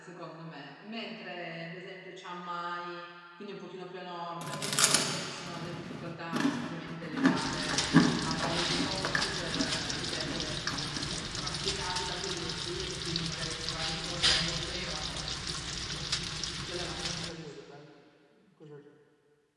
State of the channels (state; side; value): identical; both; correlation 1.00